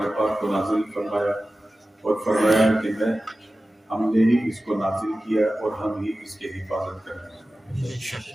پاک کو نازل فرمایا اور فرمایا کہ ہم نے ہی اس کو نازل کیا اور ہم ہی اس کی حفاظت کریں۔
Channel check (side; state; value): both; normal; correlation 0.95